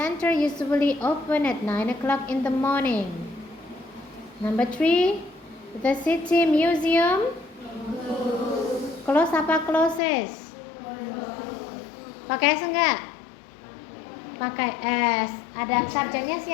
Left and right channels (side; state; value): right; drops out; at 10.0 s